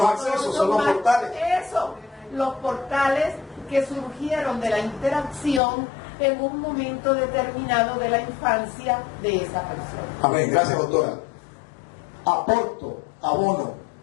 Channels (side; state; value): right; drops out; at 5.6 s